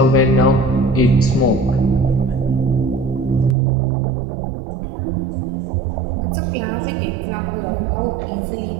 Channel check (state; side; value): drops out; left; at 3.6 s